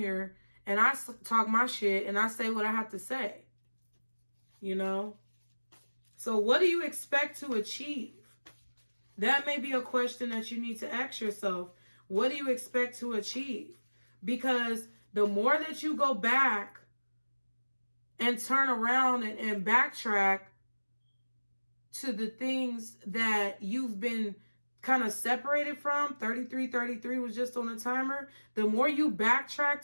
and I talk my shit and I say what I have to say. You know? So what do you expect to achieve? That may be a question that you need to ask yourself. What do you expect to achieve? Because the more that you go back and turn around and backtrack to the things that you've been kind of separated from, 33 was just on a timer, the more you backtrack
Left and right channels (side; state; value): both; inverted; correlation -1.00